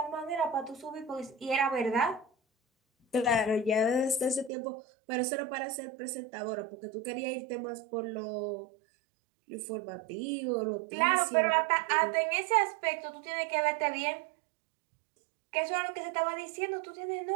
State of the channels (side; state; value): left; drops out; at 4.5 s